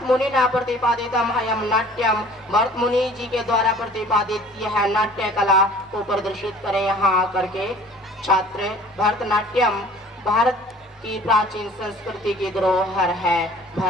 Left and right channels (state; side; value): normal; both; correlation 0.49